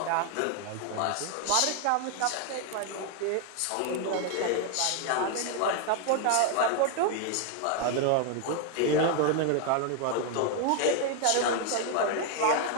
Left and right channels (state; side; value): different; both; correlation 0.01